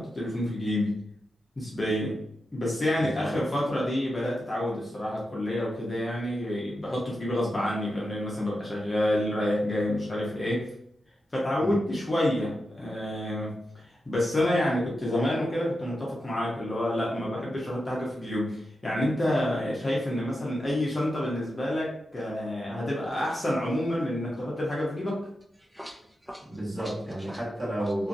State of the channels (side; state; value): both; normal; correlation 0.89